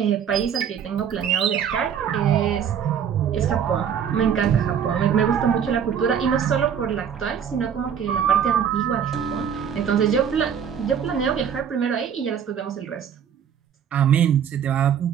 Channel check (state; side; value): quieter; left; 8.1 dB